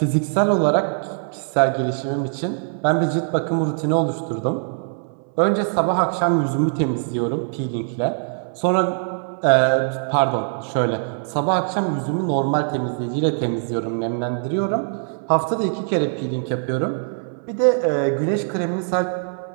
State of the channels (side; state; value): left; silent; 64 dB below the other